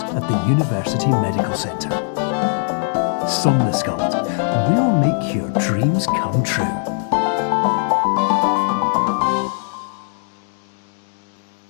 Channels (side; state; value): right; silent; 62 dB below the other